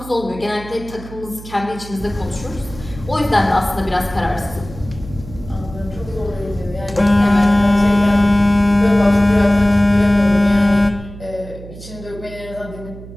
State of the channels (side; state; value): right; noise; hum, 15 dB below the sound